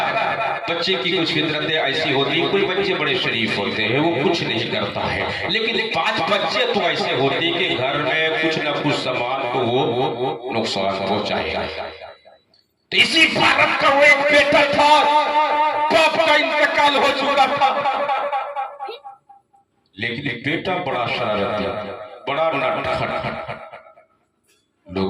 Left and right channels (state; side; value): identical; both; correlation 1.00